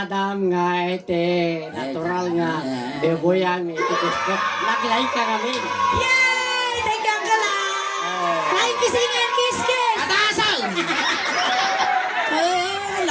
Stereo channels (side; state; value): both; identical; correlation 1.00